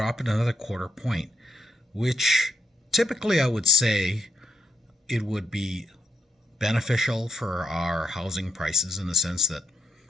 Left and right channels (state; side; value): normal; both; correlation 0.81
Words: it another quarter point, which typically I would say it would be beneficial for our housing prices in the sense that